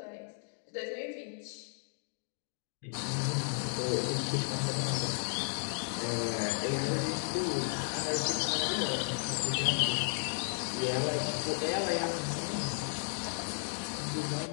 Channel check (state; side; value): silent; right; digital silence